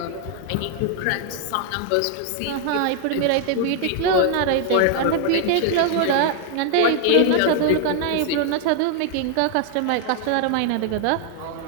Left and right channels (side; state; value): both; different; correlation 0.00